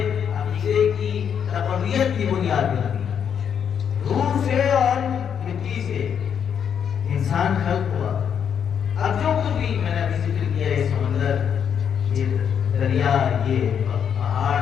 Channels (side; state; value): right; quieter; 7.9 dB